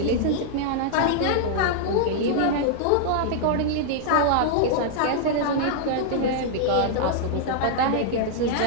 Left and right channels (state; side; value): different; both; correlation -0.01